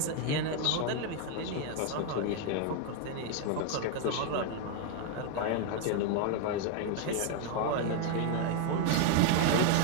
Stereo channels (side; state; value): both; different; correlation 0.01